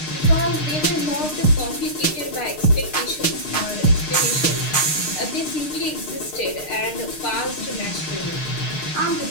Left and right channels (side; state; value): right; late; 6.6 ms